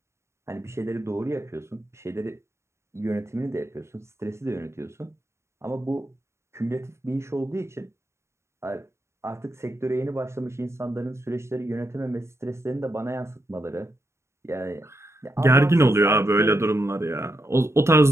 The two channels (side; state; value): left; late; 0.13 ms